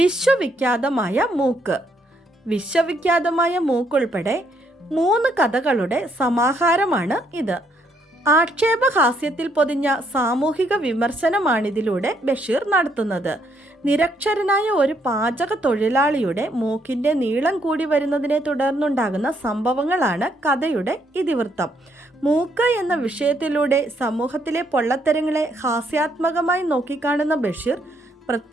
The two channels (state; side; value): normal; both; correlation 0.72